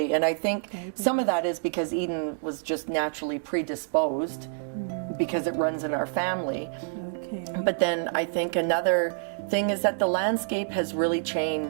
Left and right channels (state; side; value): silent; left; digital silence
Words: and I think some of that is because Eden was just naturally predisposed because it runs in our family. But then I think another thing is that the landscape has really